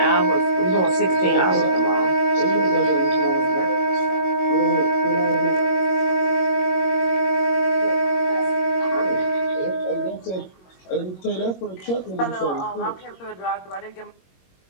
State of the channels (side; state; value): right; late; 21 ms